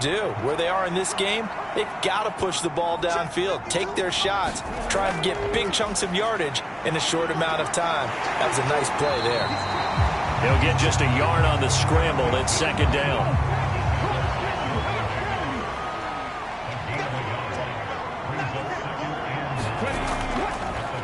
Where they are in this game, they've got to push the ball downfield, take their shots, try and get big chunks of yardage in a short amount of time. That was a nice play there. They'll get just a yard on the scramble. It's 2nd down.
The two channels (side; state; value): both; identical; correlation 1.00